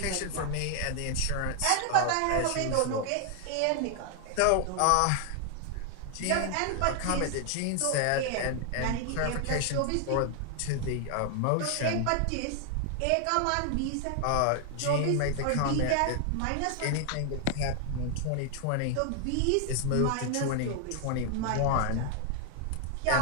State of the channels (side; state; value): both; different; correlation 0.00